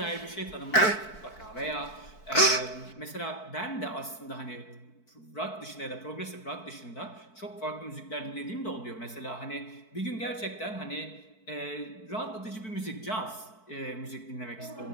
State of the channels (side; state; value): right; late; 4.6 ms